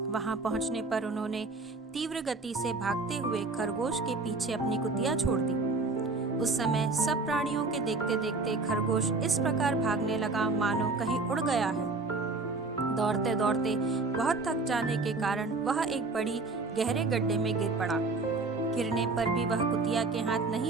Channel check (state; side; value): quieter; left; 3.6 dB